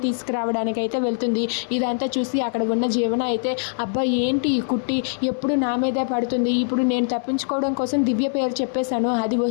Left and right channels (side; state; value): right; silent; digital silence